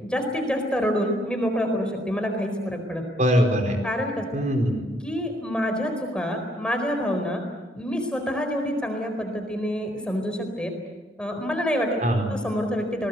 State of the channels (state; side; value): normal; both; correlation 0.68